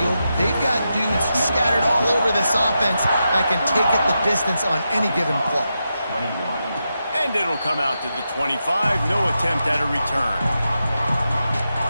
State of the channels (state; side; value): inverted; both; correlation -0.87